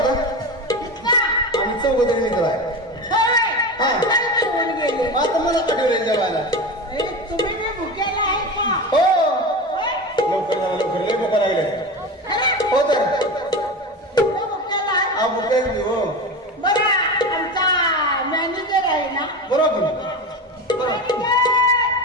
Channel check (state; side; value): normal; both; correlation 0.25